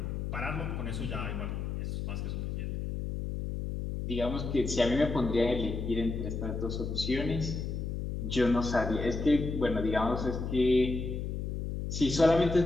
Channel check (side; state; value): left; noise; hum, 4 dB below the sound